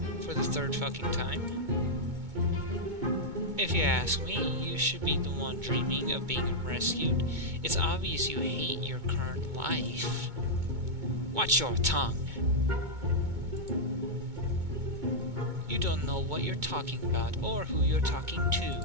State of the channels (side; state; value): left; late; 2.2 ms